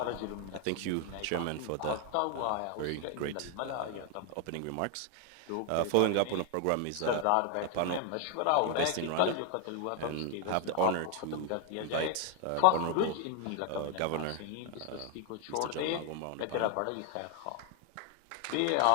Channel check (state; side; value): different; both; correlation 0.01